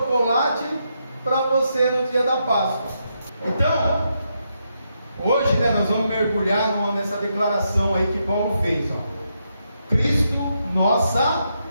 para você no dia da Páscoa. Então, hoje nós vamos mergulhar nessa declaração aí que Paulo fez, Cristo, nossa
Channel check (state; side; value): inverted; both; correlation -0.81